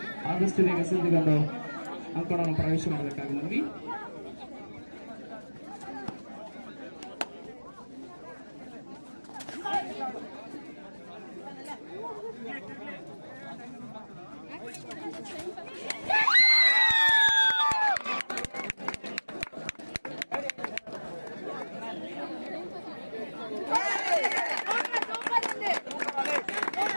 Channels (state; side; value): inverted; both; correlation -1.00